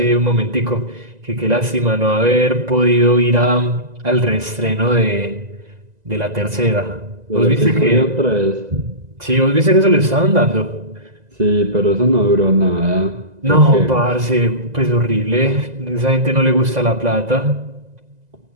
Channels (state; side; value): late; left; 2.0 ms